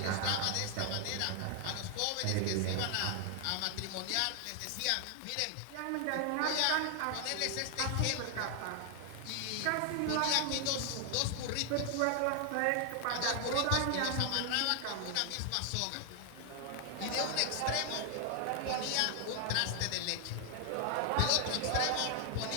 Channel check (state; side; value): different; both; correlation 0.00